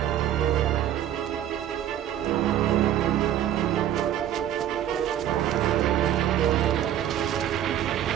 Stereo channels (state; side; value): quieter; left; 11.2 dB